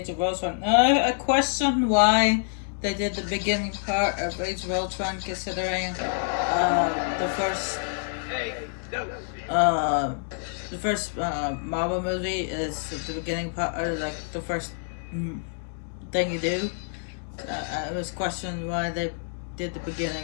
of Ultron. I question why they did the beginning part of Age of Ultron, considering the first Hey, no. Marvel movie is the beginning part, or like the first thing you do. I was questioned why they did the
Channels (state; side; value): silent; right; digital silence